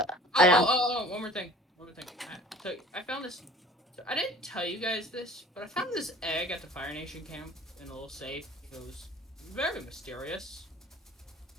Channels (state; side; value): normal; both; correlation 0.46